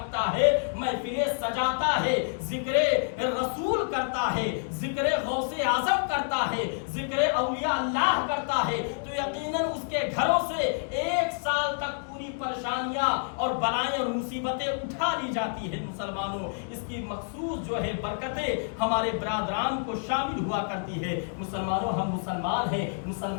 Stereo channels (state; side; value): silent; right; digital silence